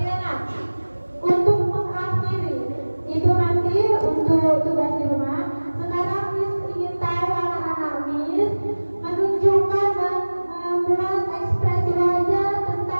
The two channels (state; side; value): inverted; both; correlation -1.00